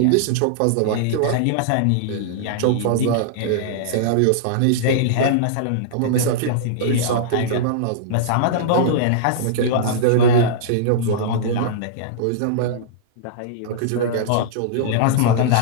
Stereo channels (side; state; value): both; different; correlation -0.02